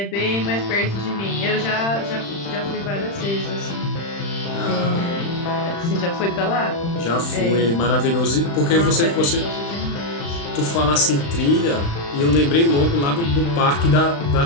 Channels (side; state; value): right; late; 35 ms